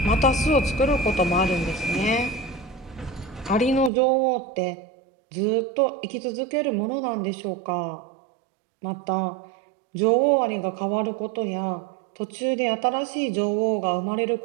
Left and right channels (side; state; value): left; drops out; at 3.9 s